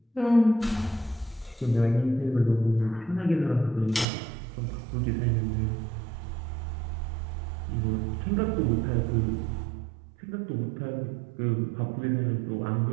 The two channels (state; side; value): drops out; left; at 4.0 s